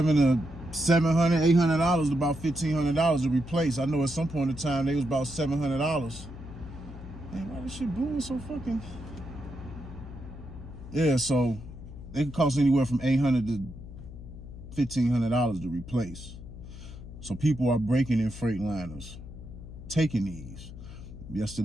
$800 to about $1,500 to replace. I know at some point in time they was about $700. Man, why this shit blowing so fucking? Yeah, so they can cost anywhere from $800 to $1,500 to replace. So people are breaking in Freightliners, taking these.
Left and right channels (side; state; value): left; noise; hum, 13 dB below the sound